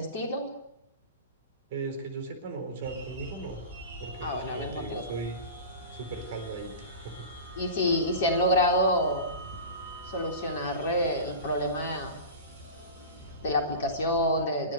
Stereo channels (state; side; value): inverted; both; correlation -0.31